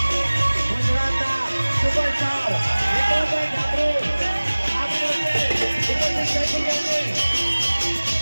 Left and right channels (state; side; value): inverted; both; correlation -1.00